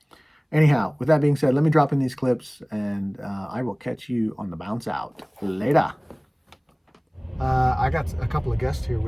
Anyhow, with that being said, let me drop in these clips, and I will catch you on the bounce out later. I got a couple of guests here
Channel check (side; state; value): both; identical; correlation 1.00